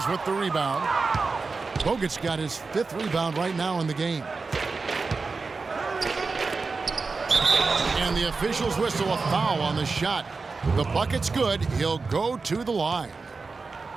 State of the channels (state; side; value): quieter; left; 4.2 dB